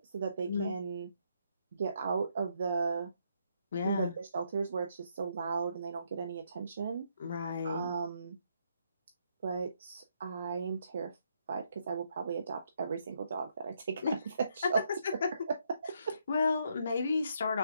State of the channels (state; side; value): inverted; both; correlation -0.74